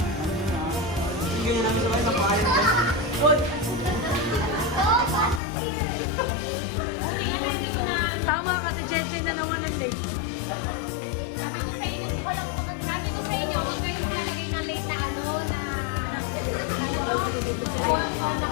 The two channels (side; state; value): right; drops out; at 5.4 s